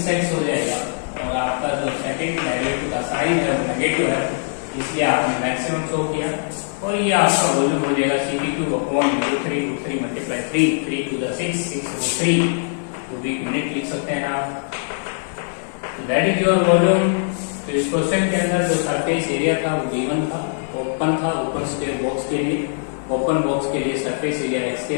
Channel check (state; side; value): silent; right; 65 dB below the other